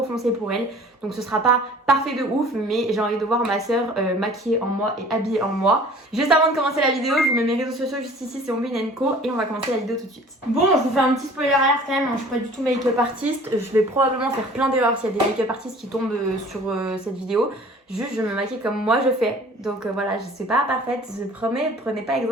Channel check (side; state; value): both; normal; correlation 0.48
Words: foncée pour elle, donc ce sera pas parfait de ouf, mais j'ai envie de voir ma soeur maquillée en moi et habillée en moi. Juste avant de commencer la vidéo, je vous mets mes réseaux sociaux juste ici, c'est Ombe&Co et on va commencer la vidéo tout de suite. Bon, je vous fais un petit spoiler alert quand même, hein, je suis pas du tout make-up artiste, je vais probablement faire plein d'erreurs s'il y a des make-up artistes qui tombent sur cette vidéo. Juste, je me maquille comme moi je fais. Donc voilà, je suis pas parfaite, je promets, prenez pas